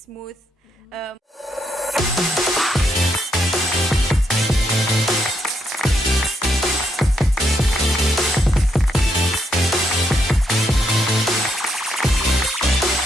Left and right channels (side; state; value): both; normal; correlation 0.78